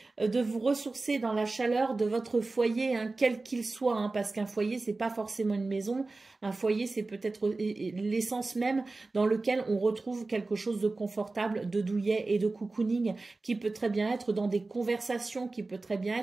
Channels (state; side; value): quieter; left; 3.4 dB